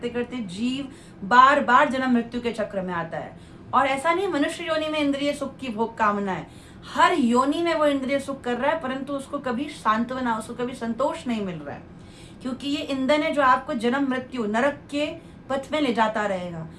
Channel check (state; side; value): identical; both; correlation 1.00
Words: करते जीव बार बार जन्म मृत्यु के चक्र में आता है। और ऐसा नहीं मनुष्य योनि में इंद्रिय सुख की भोग कामना है, हर योनि में वो इंद्रिय सुख कर रहा है, परंतु उसको कभी सांत्वना, उसको कभी संतोष नहीं मिल रहा है, क्योंकि ये ईंधन है जो आपको जन्म मृत्यु नरक के पथ में ले जाता रहेगा।